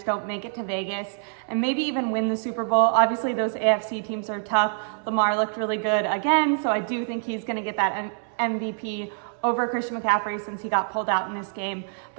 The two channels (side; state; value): left; silent; 61 dB below the other